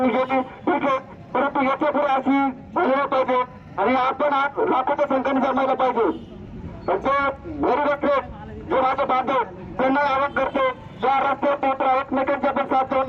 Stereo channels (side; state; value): both; identical; correlation 1.00